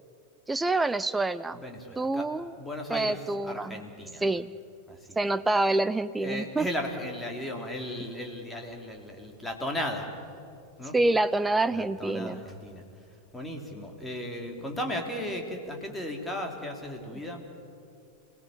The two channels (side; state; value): both; normal; correlation 0.79